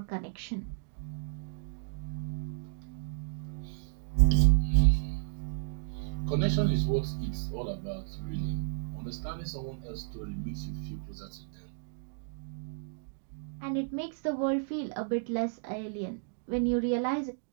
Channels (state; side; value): silent; left; digital silence